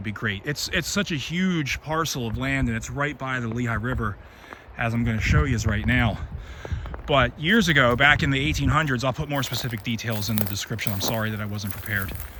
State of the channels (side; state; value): both; identical; correlation 1.00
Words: be great. It's such a huge parcel of land, and it's right by the Lehigh River, as I'm going to show you right now. But years ago, back in the 1800s, I'll put more specific details in the description. I'm sorry that I wasn't prepared.